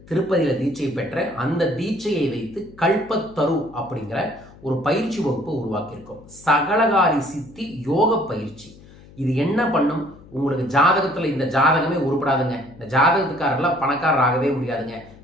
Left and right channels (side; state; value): left; noise; hum, 22 dB below the sound